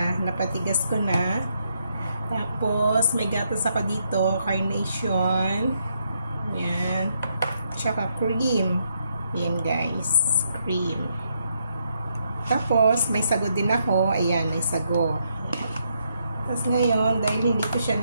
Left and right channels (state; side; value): inverted; both; correlation -0.76